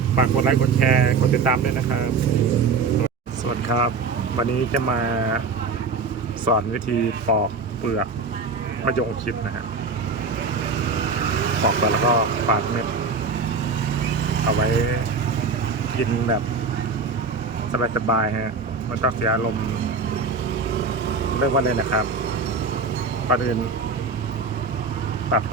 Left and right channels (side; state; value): left; quieter; 4.5 dB